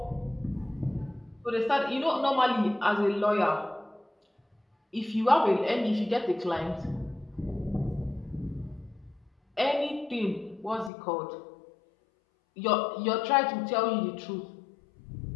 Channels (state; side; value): drops out; right; at 10.9 s